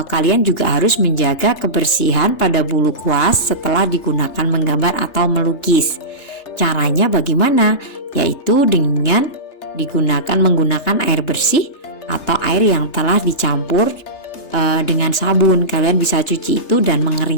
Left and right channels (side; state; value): right; late; 3.3 ms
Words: kalian juga harus menjaga kebersihan pada bulu kuas setelah digunakan menggambar atau melukis. Caranya bagaimana? Yaitu dengan menggunakan air bersih atau air yang telah dicampur dengan sabun. Kalian bisa cuci itu dan